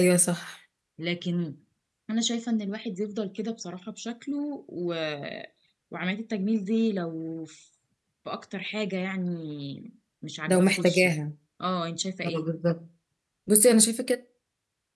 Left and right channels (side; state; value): both; identical; correlation 1.00